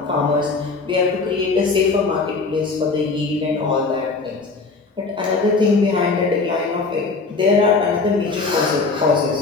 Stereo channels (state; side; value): quieter; right; 4.0 dB